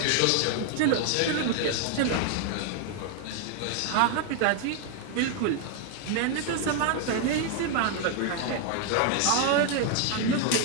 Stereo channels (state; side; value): different; both; correlation 0.00